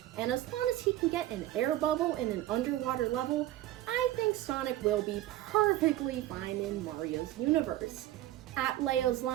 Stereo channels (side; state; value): left; quieter; 14.6 dB